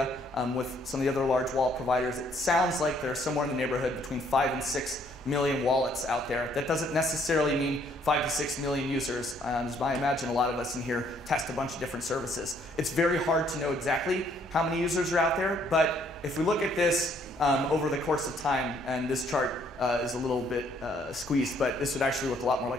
with some of the other large wallet providers, it sounds like there's somewhere in the neighborhood between 5 and 6 million wallets out there. That doesn't necessarily mean 5 to 6 million users. As I imagine a lot of us in here test a bunch of different services. It's very hard to know exactly how many users are out there, but if we look at this over the course of time, and this chart is a little bit squeezed, but this would actually look a lot more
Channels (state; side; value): normal; both; correlation 0.65